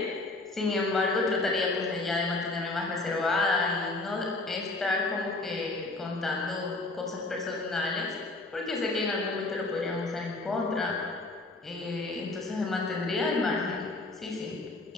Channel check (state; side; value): quieter; right; 3.1 dB